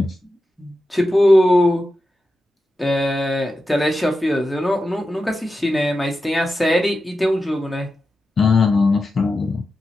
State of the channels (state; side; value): normal; both; correlation 0.91